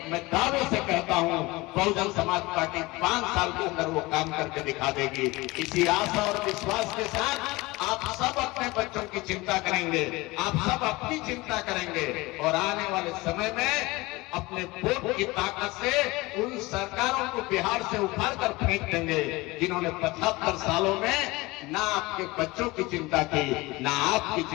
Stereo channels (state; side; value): quieter; right; 22.0 dB